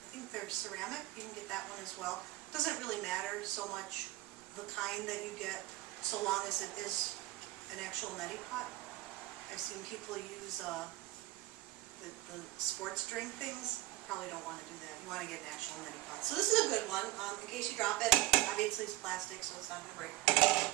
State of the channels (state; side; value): quieter; left; 18.0 dB